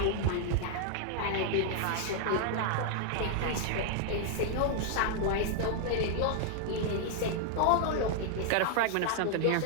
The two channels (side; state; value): both; different; correlation 0.00